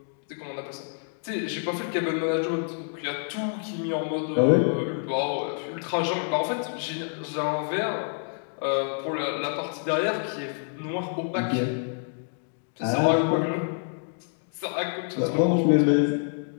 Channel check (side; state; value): right; silent; 60 dB below the other